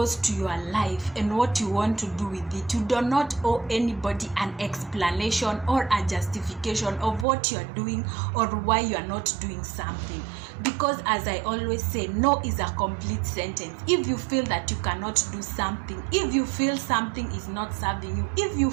to your life and what you want to do with it, you do not owe anybody an explanation or a justification of what you're doing or why you're not doing something. Because as I always say, no is a complete sentence. If you feel that you cannot do something, if you feel something is not serving you, if you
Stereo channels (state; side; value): drops out; left; at 7.2 s